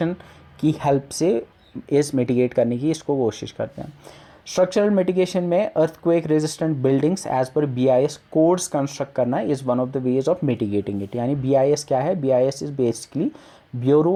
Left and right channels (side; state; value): both; identical; correlation 1.00